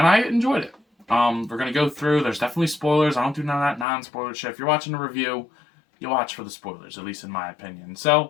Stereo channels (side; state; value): right; drops out; at 3.9 s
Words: I enjoyed it. We're going to go through. There's definitely spoilers. I don't do none of that non-spoiler shit. If you're watching a review, you watch for the spoilers, at least in my opinion.